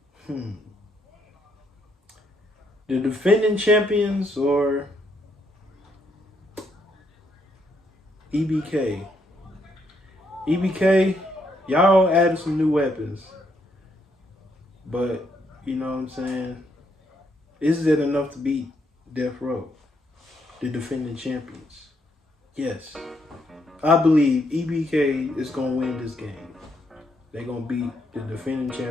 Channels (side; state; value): both; normal; correlation 0.74